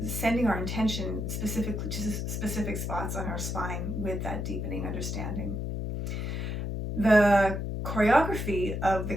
our intention specifically to specific spots on our spine with that deepening understanding. The choreography of the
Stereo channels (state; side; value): noise; left; hum, 3 dB below the sound